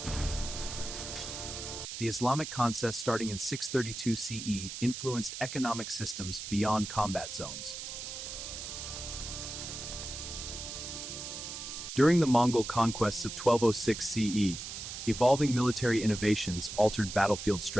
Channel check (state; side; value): noise; right; hiss, 8 dB below the sound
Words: The Islamic conquest, starting in 632 CE, influenced economic systems beyond combat zones. During the Mongol conquests of 1206 CE, evolving military innovations altered battlefield